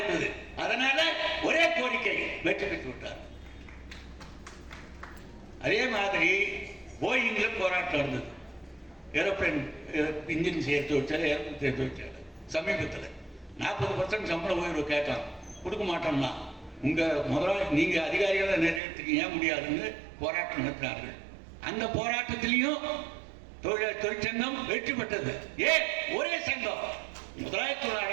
அதனால ஒரே கோரிக்கை வெற்றி பெற்று விட்டார். அதே மாதிரி போயிங்ல போராட்டம் இருந்தது. ஏரோப்ளைன் இன்ஜின் சேர்த்து வச்சாரு, ஏரோப்ளைன் சேர்த்து வச்சாரு. சமீபத்தில் 40% சம்பள உயர்வு கேட்டான், கொடுக்க மாட்டோம்னா உங்க முதலாளி நீங்க அதிகாரிகளை நிறைவேற்றுக்க ஏன் முடியாதுன்னு போராட்டம் நடத்தினார்கள். அந்த போராட்டத்திலையும் தொழிற்சங்கம் வெற்றி பெற்றது. ஏன்? ஒரே சங்கம். முதலாளித்துவ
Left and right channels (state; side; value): drops out; left; at 18.8 s